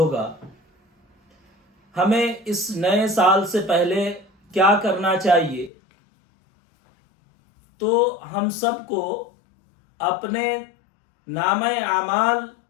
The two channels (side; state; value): right; drops out; at 5.7 s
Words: ہمیں اس نئے سال سے پہلے کیا کرنا چاہیے؟ تو ہم سب کو اپنے نامہ اعمال